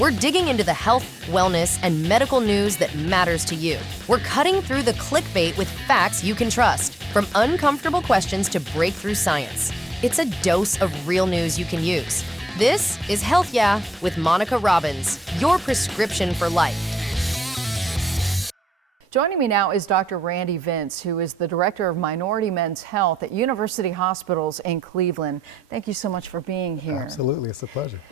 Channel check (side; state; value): both; normal; correlation 0.81